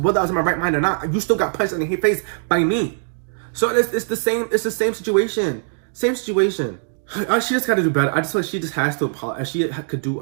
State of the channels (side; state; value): left; silent; digital silence